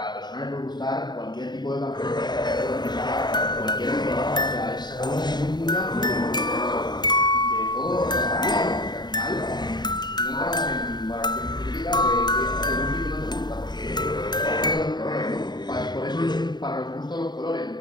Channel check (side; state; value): right; late; 0.21 ms